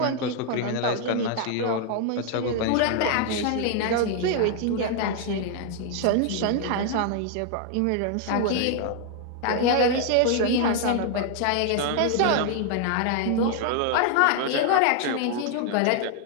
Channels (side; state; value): both; different; correlation 0.00